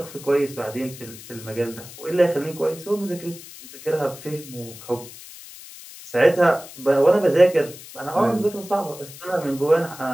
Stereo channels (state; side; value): noise; left; hiss, 16 dB below the sound